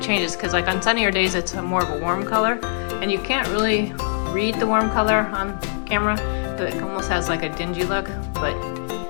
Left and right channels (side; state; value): right; silent; digital silence